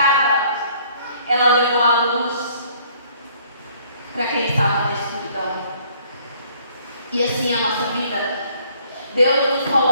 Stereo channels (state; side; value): inverted; both; correlation -0.61